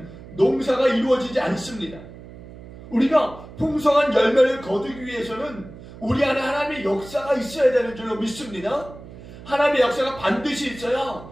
농사가 이루어지지 않습니다. 우리가 풍성한 열매를 거두기 위해서는 우리 안에 하나님의 역사가 있어야 되는 줄로 믿습니다. 하나님의 역사가 반드시 있어야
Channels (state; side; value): noise; right; hum, 16 dB below the sound